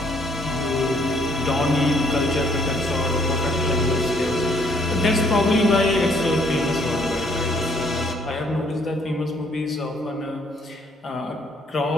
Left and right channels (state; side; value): normal; both; correlation 0.65